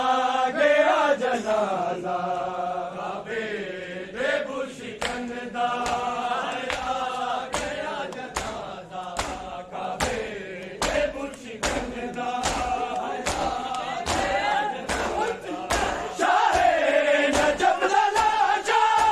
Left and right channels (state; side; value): identical; both; correlation 1.00